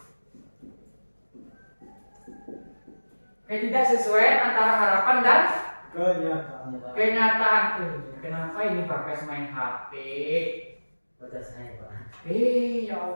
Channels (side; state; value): both; inverted; correlation -1.00